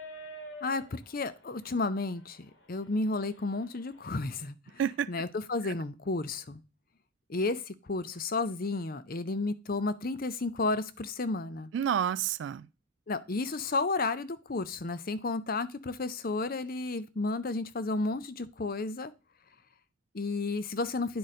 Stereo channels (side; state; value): both; normal; correlation 0.19